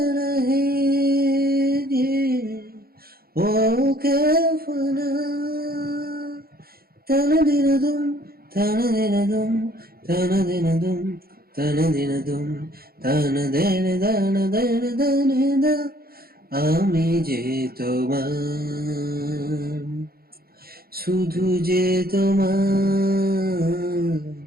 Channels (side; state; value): left; late; 0.44 ms